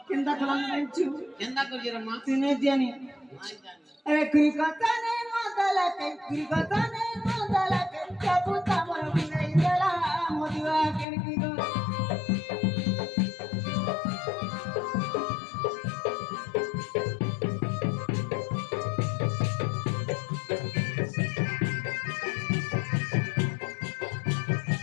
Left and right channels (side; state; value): right; drops out; at 11.1 s